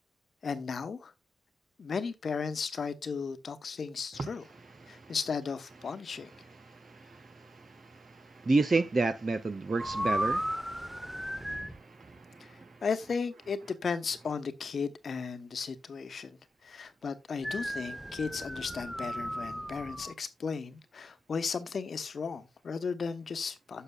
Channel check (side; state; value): both; normal; correlation 0.88